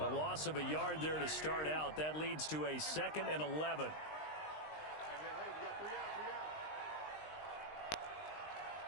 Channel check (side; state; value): right; late; 19 ms